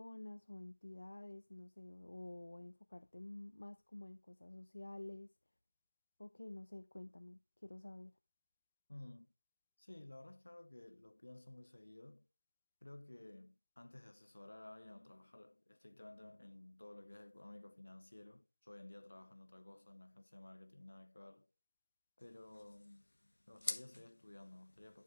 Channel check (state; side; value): inverted; both; correlation -1.00